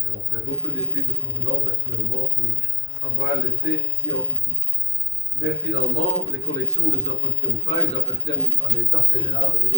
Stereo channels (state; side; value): normal; both; correlation 0.35